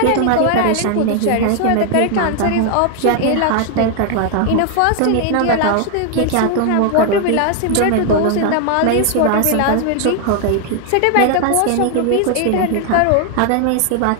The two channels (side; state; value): both; different; correlation 0.00